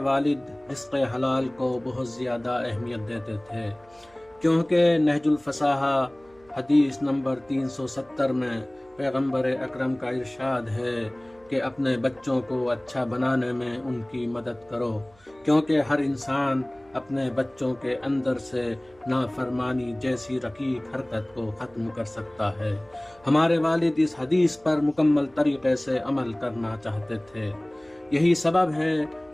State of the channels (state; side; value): noise; right; hum, 30 dB below the sound